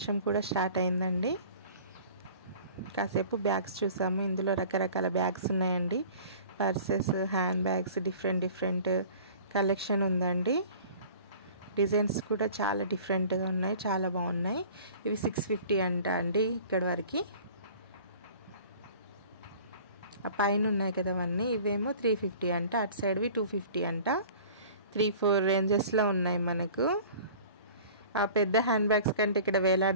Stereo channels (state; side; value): inverted; both; correlation -0.45